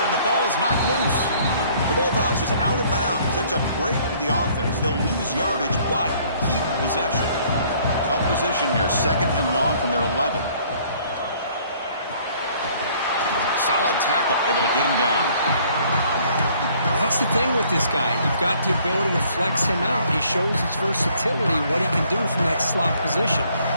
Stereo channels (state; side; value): inverted; both; correlation -0.60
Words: and the ball is knocked loose. The ball bounces out of bounds. That's a break for the offense. They'll lose yardage, but keep possession. Tough position here. 2nd and long from their 11. Solid tackle, able to get him down. Well, that's the thing with this guy. You've got the ability to flex him out. He shows his versatility, what he can do from that slot position.